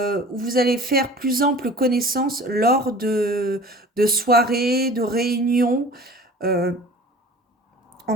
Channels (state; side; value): normal; both; correlation 0.43